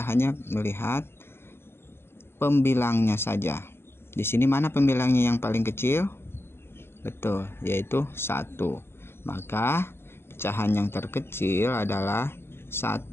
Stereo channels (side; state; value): right; late; 0.12 ms